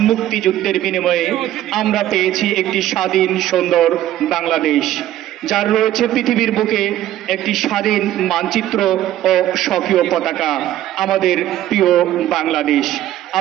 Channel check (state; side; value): quieter; left; 13.2 dB